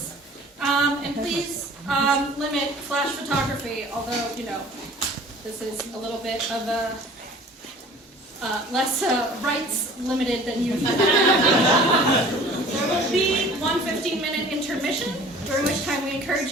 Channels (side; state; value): both; normal; correlation 0.47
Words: and please limit flash photography, although, you know, this is a little bit of a less rights limited than usual. There will be one 15-minute intermission, during which time we encourage